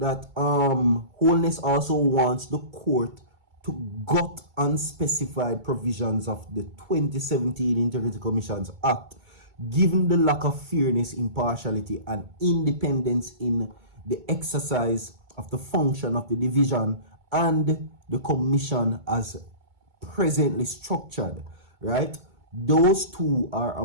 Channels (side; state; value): left; late; 2.3 ms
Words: Holness also wants the court to gut unspecified provisions of the 2017 Integrity Commissions Act, given the lack of fairness, impartiality, and independence in the exercise of the function of the division and the commission as presently structured, right? Those two are